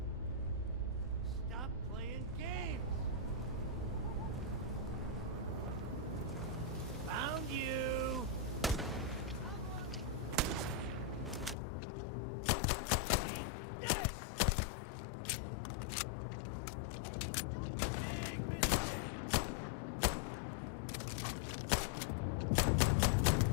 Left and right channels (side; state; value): right; drops out; at 11.6 s